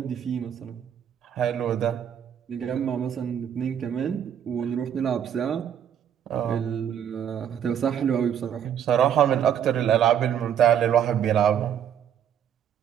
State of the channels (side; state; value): left; quieter; 9.2 dB